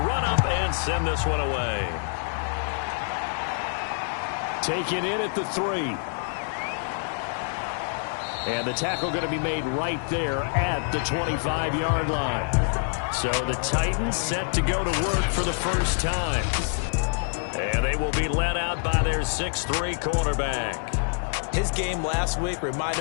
run up and send this one away. Taken in at the 3. And the tackle going to be made right there at the 25-yard line. So the Titans set to go to work for the first time. And they will be led out by their 6'3" cornerback. His game last week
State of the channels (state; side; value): silent; right; digital silence